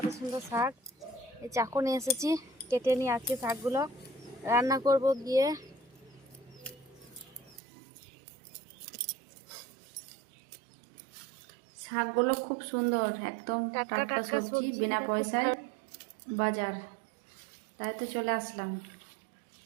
সুন্দর শাক, এই চাকু নিয়ে এসেছি, কেটে নিয়ে আজকে শাকগুলো রান্না করব গিয়ে। শাকগুলো খুব সুন্দর, একদম টাটকা সবজি, বিনা পয়সায় বাজার, তাই তো চলে আসলাম।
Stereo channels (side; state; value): left; drops out; at 7.6 s